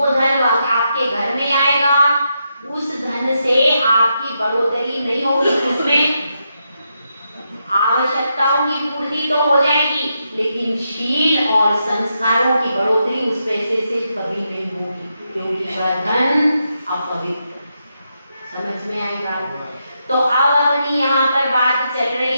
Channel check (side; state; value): both; inverted; correlation -0.83